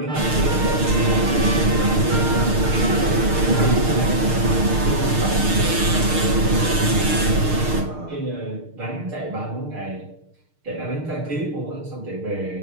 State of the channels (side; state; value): left; late; 6.6 ms